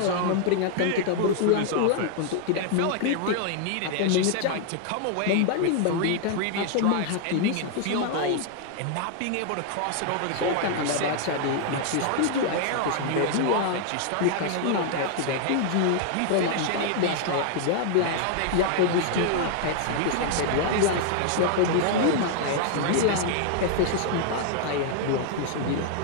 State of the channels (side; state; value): both; different; correlation 0.00